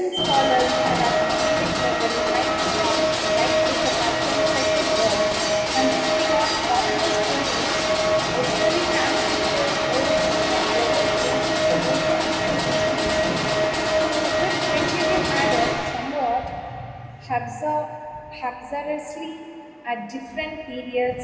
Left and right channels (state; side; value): identical; both; correlation 1.00